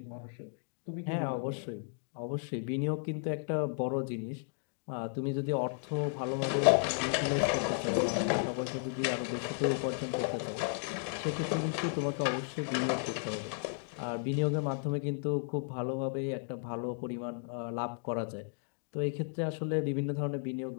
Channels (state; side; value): silent; right; digital silence